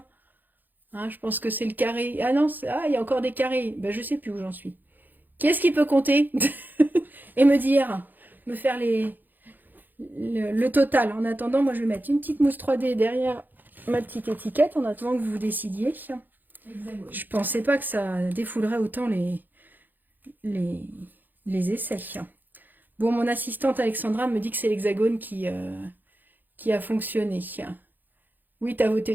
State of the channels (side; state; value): left; late; 0.087 ms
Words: Hein, je pense que c'est le carré. Ah non, il y a encore des carrés. Ben, je sais plus où j'en suis. Qui est-ce qui peut compter et me faire le total? En attendant, moi, je vais mettre une petite mousse 3D derrière ma petite étiquette en attendant que vous vous décidiez. Hexagone. Je pensais pas que ça défoulerait autant les essais. Bon, mon assistante Alexandra me dit que c'est l'hexagone qui a fonctionné. Oui, tu as